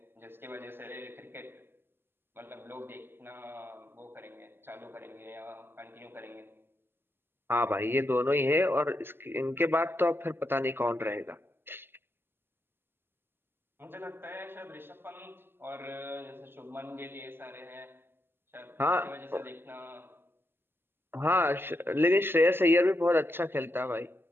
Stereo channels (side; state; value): left; late; 0.11 ms